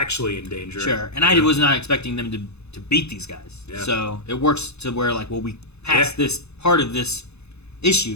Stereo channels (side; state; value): right; late; 0.80 ms